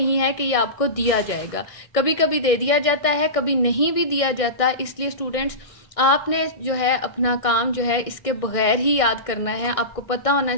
है कि ये आपको दिया जाएगा। कभी कभी दे दिया जाता है, कभी नहीं भी दिया जाता। इसलिए स्टूडेंट्स, आपने जो है अपना काम जो है इसके बगैर ही याद करना है। आपको पता होना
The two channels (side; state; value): right; late; 1.6 ms